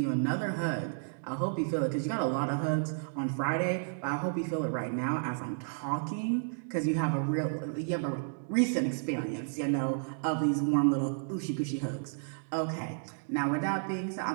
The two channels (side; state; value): left; silent; digital silence